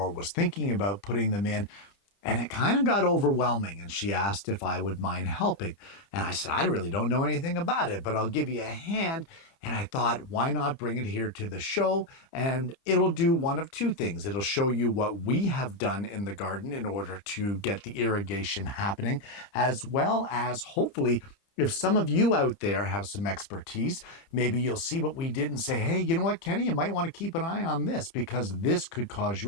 was thinking about putting them in, and it kind of got overwhelming. And she asked if I would mind helping. And I said, I really don't know anything about it, but I'll give you a hand. And I thought, why not bring it here to the show? And it'll do one of two things. It'll show you what we have done in the garden in order to get the irrigation happening, as well as hopefully, if some of you out there have some expertise, maybe you'll see what we did and say, hey, you know what, Kenny, you might want to keep an eye on this because this could cause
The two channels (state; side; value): late; right; 29 ms